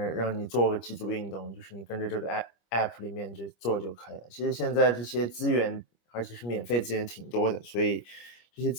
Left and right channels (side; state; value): right; late; 25 ms